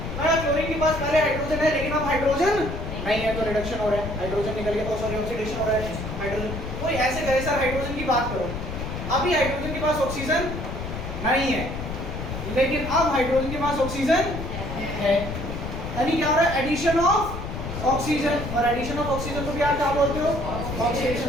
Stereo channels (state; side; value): noise; left; rumble, 6 dB below the sound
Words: मैं क्लोरीन के पास पहले हाइड्रोजन है, लेकिन अब हाइड्रोजन नहीं है, तो रिडक्शन हो रहा है, हाइड्रोजन निकल गया, सॉरी ऑक्सीडेशन हो रहा है हाइड्रोजन। कोई ऐसे कहे सर हाइड्रोजन की बात करो, अभी हाइड्रोजन के पास ऑक्सीजन नहीं है, लेकिन अब हाइड्रोजन के पास ऑक्सीजन है, यानी क्या हो रहा है? एडिशन ऑफ ऑक्सीजन, और एडिशन ऑफ ऑक्सीजन को भी आप क्या बोलते हो? ऑक्सीडेशन।